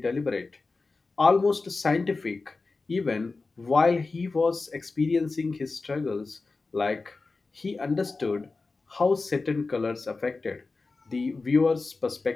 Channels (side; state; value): right; quieter; 3.8 dB